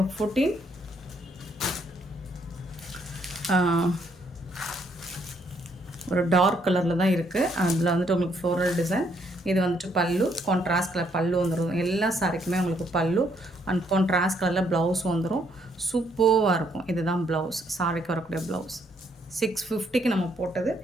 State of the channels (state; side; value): normal; both; correlation 0.70